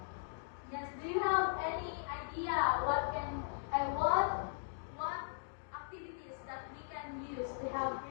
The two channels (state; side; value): silent; right; digital silence